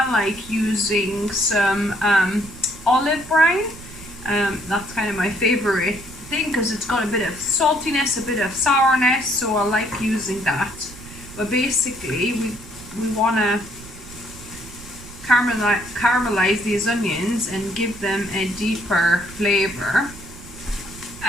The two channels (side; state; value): right; noise; rumble, 17 dB below the sound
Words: like using some olive brine. That's kind of my favorite thing because it's got a bit of saltiness, a bit of sourness, so I like using that. But basically, we want to caramelize these onions and give them a deeper flavor.